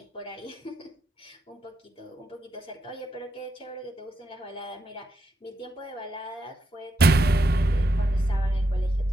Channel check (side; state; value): both; normal; correlation 0.83